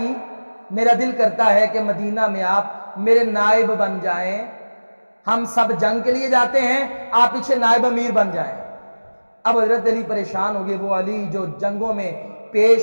میرا دل کرتا ہے کہ مدینہ میں آپ میرے نائب بن جائیں، ہم سب جنگ کے لیے جاتے ہیں، آپ پیچھے نائب امیر بن جائیں۔ اب حضرت علی پریشان ہو گئے، وہ علی جو جنگوں میں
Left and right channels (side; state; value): both; inverted; correlation -1.00